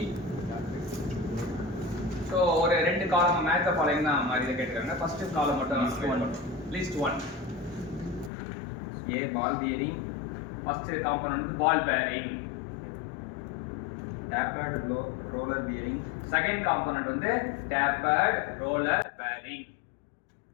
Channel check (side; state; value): right; drops out; at 8.3 s